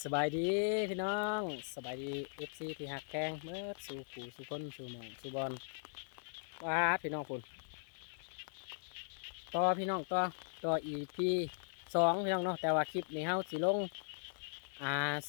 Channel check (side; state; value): right; silent; digital silence